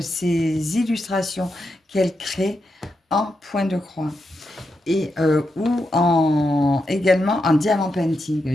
ces illustrations qu'elle crée en point de croix et également en diamant painting.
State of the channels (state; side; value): normal; both; correlation 0.85